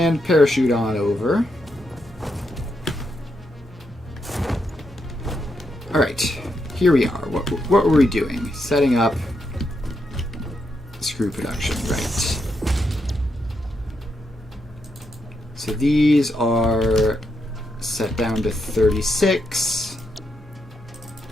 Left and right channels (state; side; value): normal; both; correlation 0.82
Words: parachute on over. Alright, here we are. What were we doing? Setting up screw production, right. So these are set down to 36.